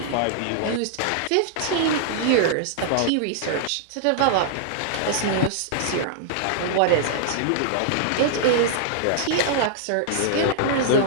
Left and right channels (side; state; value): both; different; correlation -0.01